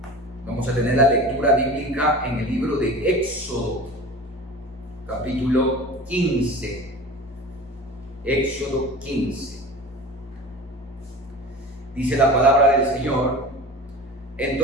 Vamos a tener la lectura bíblica en el libro de Éxodo, capítulo 15. Éxodo 15. Dice la palabra del Señor:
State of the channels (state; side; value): normal; both; correlation 0.35